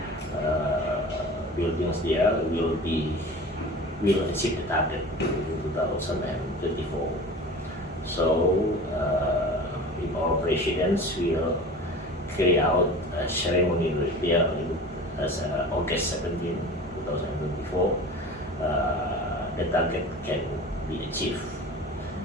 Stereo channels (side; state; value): both; normal; correlation 0.37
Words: buildings there will achieve the target in 2024. So if our presidents will carry out a ceremony there as August 17, 2024, the target can be achieved.